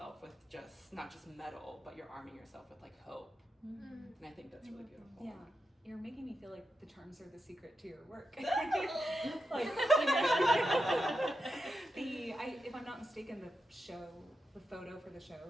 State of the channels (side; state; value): both; normal; correlation 0.88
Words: with just not just metal, but you're arming yourself with like hope. And I think that's really beautiful. Yeah. You're making me feel like the charms are the secret to your work. Like, you know, if I'm not mistaken, the photo for the